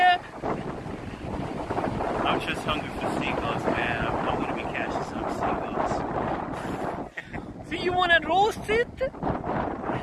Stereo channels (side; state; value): both; identical; correlation 1.00